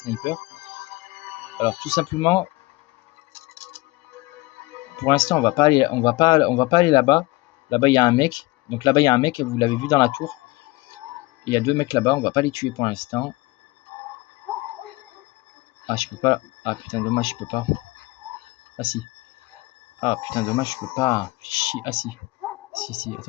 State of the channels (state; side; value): quieter; right; 21.8 dB